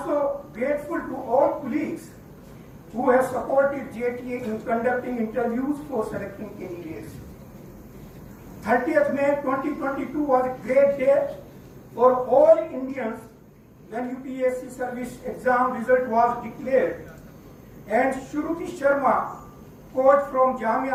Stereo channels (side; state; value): both; identical; correlation 1.00